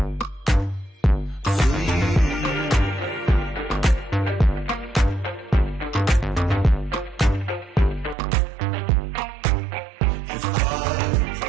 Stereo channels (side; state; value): left; drops out; at 8.2 s